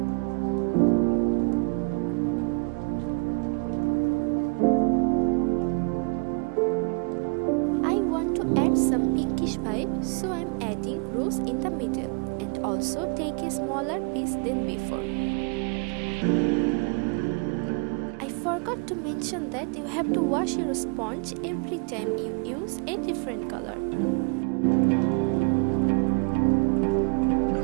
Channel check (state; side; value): quieter; left; 34.5 dB